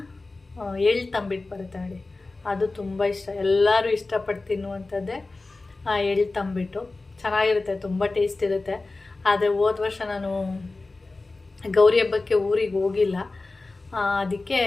ಎಳ್ಳು ತಂಬಿಟ್ಟು ಬರುತ್ತೆ ನೋಡಿ, ಅದು ತುಂಬ ಇಷ್ಟ. ಎಲ್ಲರೂ ಇಷ್ಟಪಟ್ಟು ತಿನ್ನುವಂಥದ್ದೇ ಆ ಎಳ್ಳು ತಂಬಿಟ್ಟು. ಚೆನ್ನಾಗಿರುತ್ತೆ, ತುಂಬ ಟೇಸ್ಟ್ ಇರುತ್ತೆ. ಆದರೆ ಹೋದ ವರ್ಷ ನಾನು ಗೌರಿ ಹಬ್ಬಕ್ಕೆ ಊರಿಗೆ ಹೋಗಿಲ್ಲ, ಅದಕ್ಕೆ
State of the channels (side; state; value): right; quieter; 3.4 dB